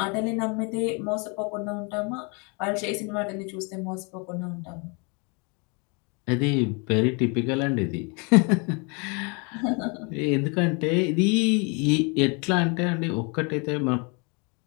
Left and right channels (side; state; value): right; quieter; 32.7 dB